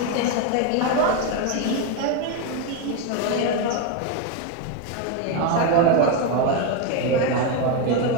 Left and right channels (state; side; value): different; both; correlation 0.02